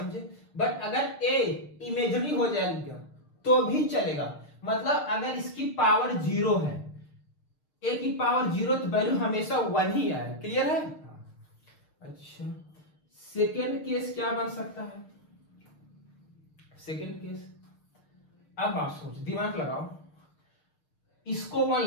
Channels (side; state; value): right; late; 6.6 ms